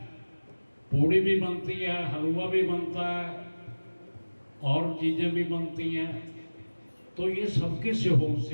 पूड़ी भी बनती है, हलवा भी बनता है और चीज़ें भी बनती हैं, तो ये सबके सहयोग से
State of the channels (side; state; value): both; inverted; correlation -1.00